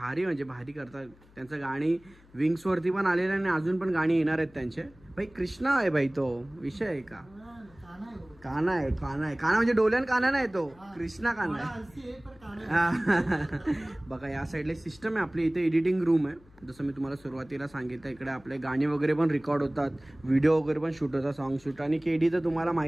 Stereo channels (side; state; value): left; noise; hum, 26 dB below the sound